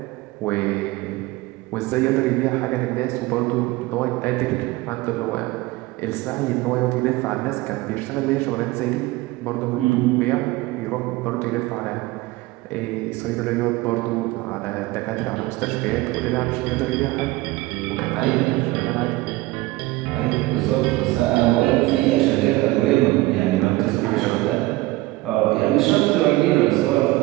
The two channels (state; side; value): quieter; left; 19.7 dB